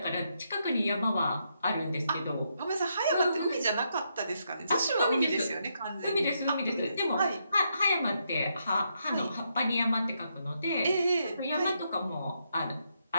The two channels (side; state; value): both; inverted; correlation -0.79